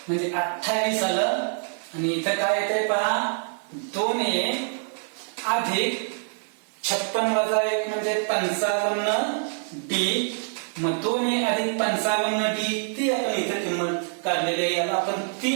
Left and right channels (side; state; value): left; silent; 61 dB below the other